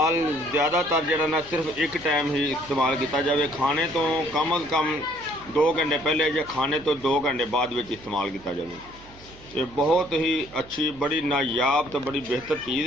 ज़्यादातर जिहड़ा ना सिर्फ एक टाइम ही इस्तेमाल किया जाए, खाने तो कम अज़ कम 2 घंटे पहले या खाने तो 2 घंटे बाद विच इस्तेमाल किया जाए। ये बहुत ही अच्छी, बड़ी नायाब तो बड़ी बेहतर चीज़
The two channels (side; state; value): right; noise; hum, 22 dB below the sound